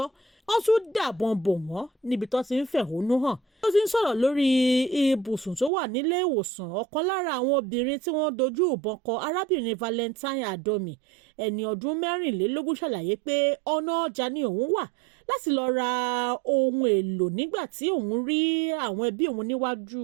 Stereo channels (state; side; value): drops out; left; at 5.7 s